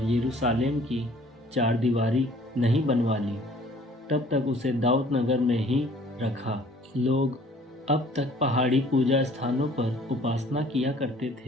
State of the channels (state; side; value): normal; both; correlation 0.54